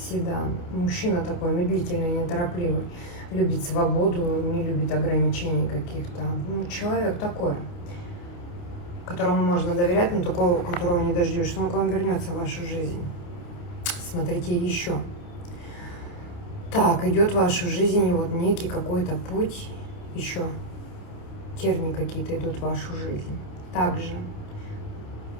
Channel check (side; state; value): right; late; 29 ms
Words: Мужчина такой медлительный, неторопливый. Любит свободу, не любит ограничений каких-то. Ну, человек такой, которому можно доверять, но такого, которого не дождешься. Он к вам вернется в вашу жизнь. Смотрите еще. Так, идет в вашу жизнь вот некий какой-то путь, еще тернии какие-то идут в вашу жизнь. Также,